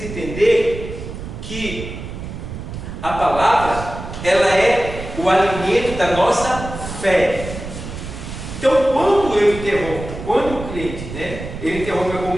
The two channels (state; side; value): noise; right; rumble, 9 dB below the sound